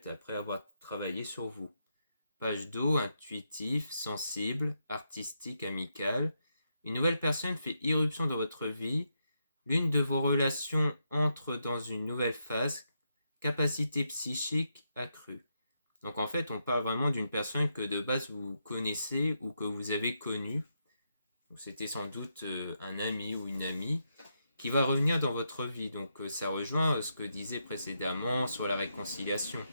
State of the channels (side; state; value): both; inverted; correlation -0.81